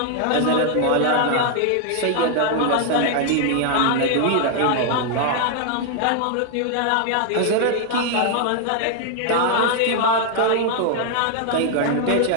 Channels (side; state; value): both; different; correlation 0.00